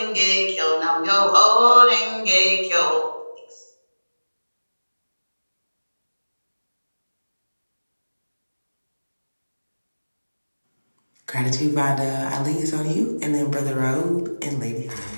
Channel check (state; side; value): inverted; both; correlation -1.00